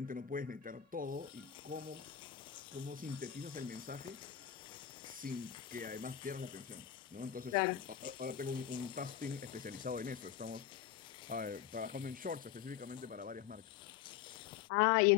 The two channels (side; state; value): right; quieter; 10.2 dB